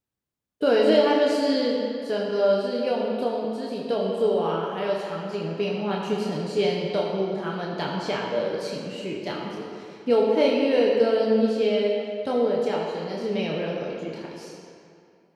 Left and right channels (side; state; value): both; identical; correlation 1.00